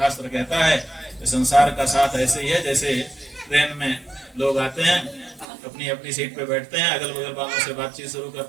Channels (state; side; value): drops out; left; at 5.5 s